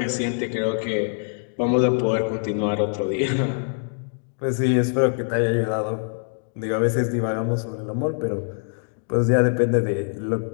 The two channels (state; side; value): silent; right; 60 dB below the other